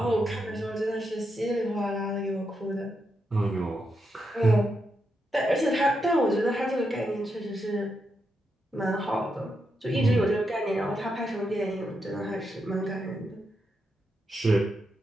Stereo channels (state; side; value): normal; both; correlation 0.83